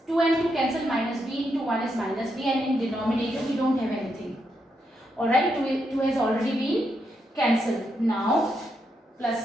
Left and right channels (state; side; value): normal; both; correlation 0.81